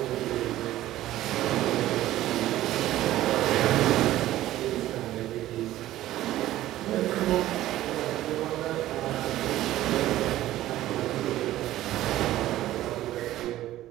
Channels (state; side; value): quieter; left; 14.6 dB